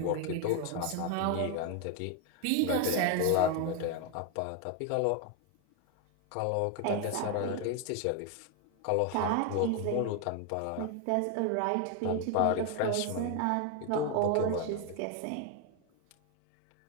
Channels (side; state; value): both; different; correlation 0.01